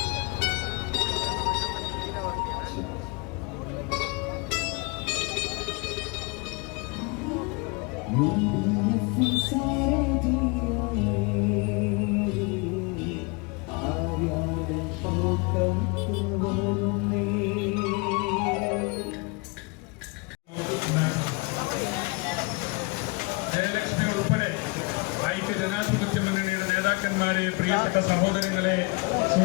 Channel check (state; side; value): quieter; right; 28.4 dB